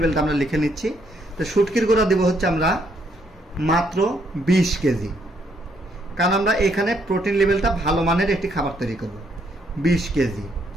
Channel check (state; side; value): normal; both; correlation 0.71